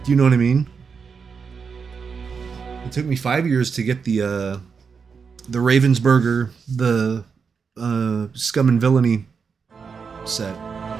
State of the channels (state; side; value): quieter; left; 5.7 dB